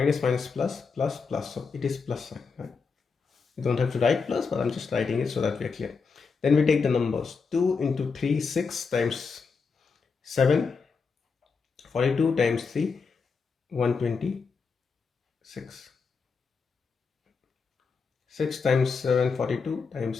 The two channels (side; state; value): right; quieter; 5.1 dB